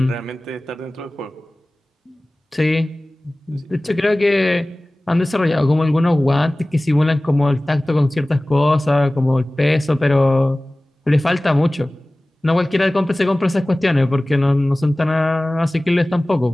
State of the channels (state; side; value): normal; both; correlation 0.98